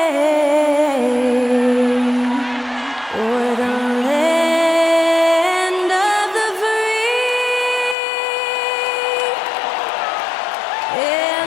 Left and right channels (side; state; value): right; drops out; at 8.0 s